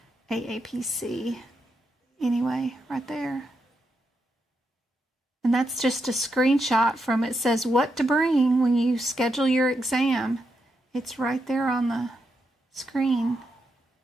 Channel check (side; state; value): both; normal; correlation 0.83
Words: AAPC. Anyway, right there. And that's just a screenshot from it. Says what to bring when you schedule your exam. It's right there on the screen